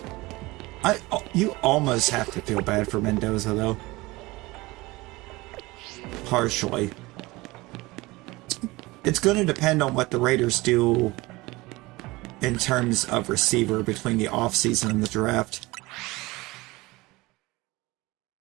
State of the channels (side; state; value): left; quieter; 21.5 dB